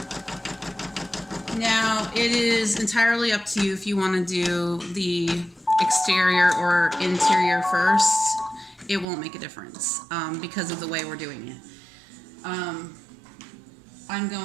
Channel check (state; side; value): drops out; left; at 9.1 s